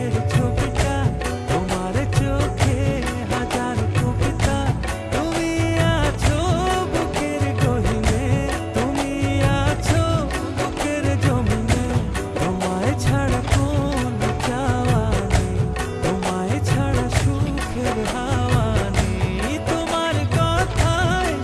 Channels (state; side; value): identical; both; correlation 1.00